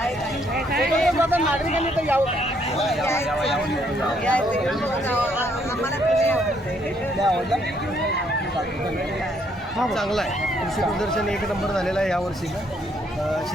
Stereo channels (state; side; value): normal; both; correlation 0.70